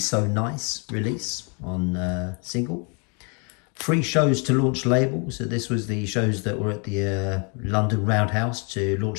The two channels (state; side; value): quieter; right; 35.0 dB